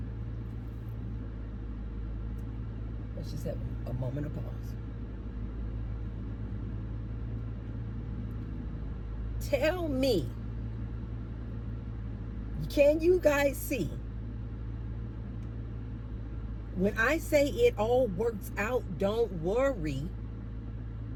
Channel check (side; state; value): both; identical; correlation 1.00